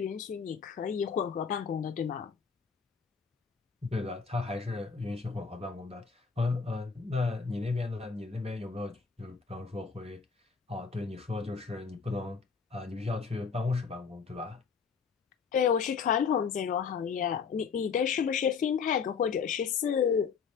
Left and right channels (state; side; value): quieter; right; 5.9 dB